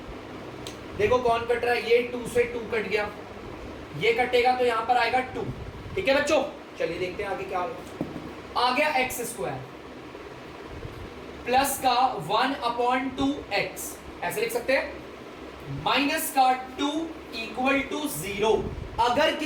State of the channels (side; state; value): both; identical; correlation 1.00